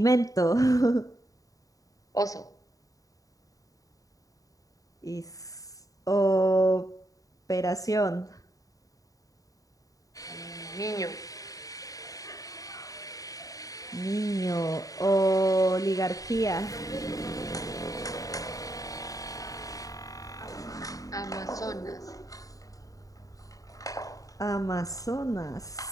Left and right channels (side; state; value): right; late; 0.17 ms